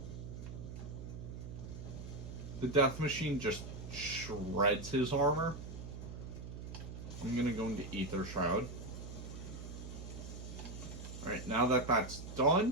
The Death Machine just shreds his armor. I'm gonna go into Ether Shroud. Alright, now that that's done,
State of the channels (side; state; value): right; noise; hum, 9 dB below the sound